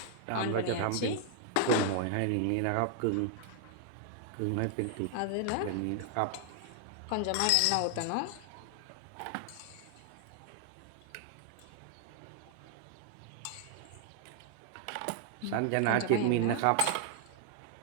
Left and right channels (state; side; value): different; both; correlation 0.00